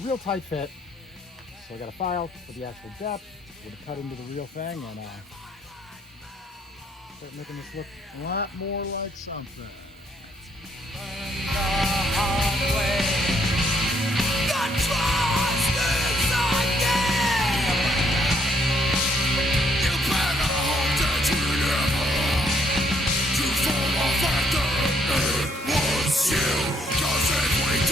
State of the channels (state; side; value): normal; both; correlation 0.70